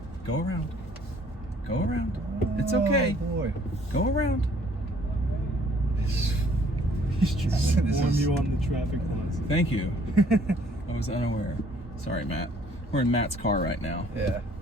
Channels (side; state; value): both; normal; correlation 0.60